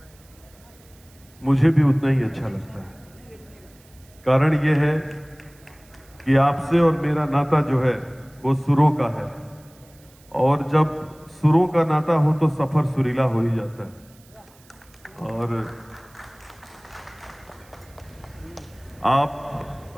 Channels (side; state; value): right; noise; hiss, 28 dB below the sound